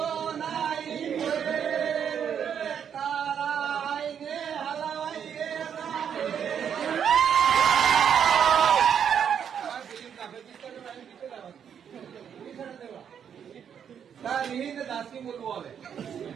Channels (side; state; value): left; quieter; 8.1 dB